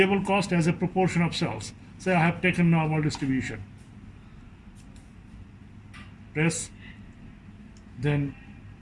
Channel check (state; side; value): identical; both; correlation 1.00